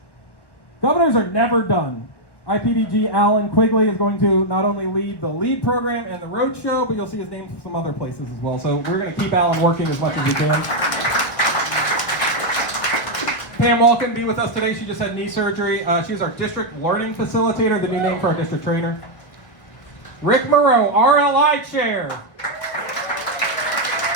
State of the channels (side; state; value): right; late; 1.2 ms